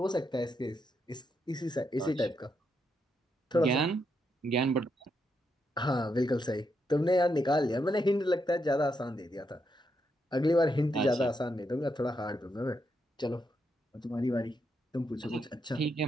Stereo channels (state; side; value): normal; both; correlation 0.81